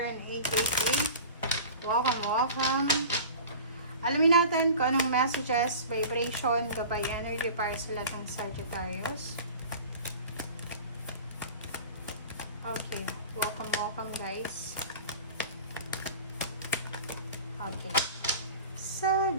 888. Welcome. Alamin natin kung anong messages, vibration, gabay energy para sa lahat ng Sagittarius. Okay, welcome guys. Okay.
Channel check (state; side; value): inverted; both; correlation -0.38